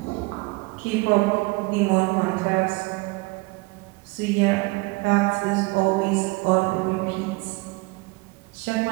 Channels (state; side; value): quieter; left; 25.3 dB